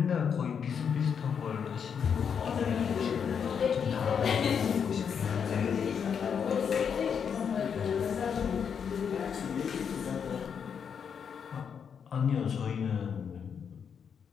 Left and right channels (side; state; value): right; quieter; 7.1 dB